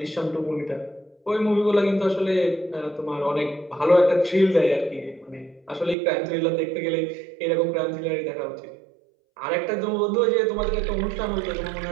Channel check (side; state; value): left; drops out; at 6.0 s